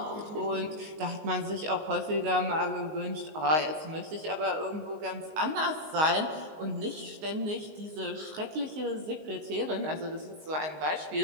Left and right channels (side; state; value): left; late; 19 ms